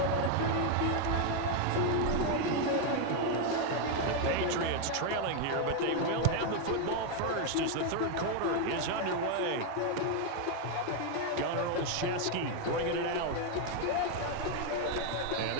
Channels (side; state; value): both; different; correlation 0.01